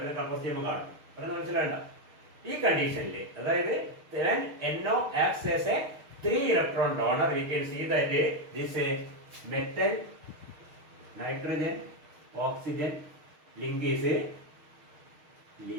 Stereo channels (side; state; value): left; late; 6.5 ms